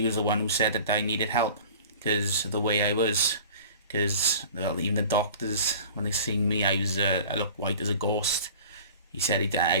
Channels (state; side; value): inverted; both; correlation -0.43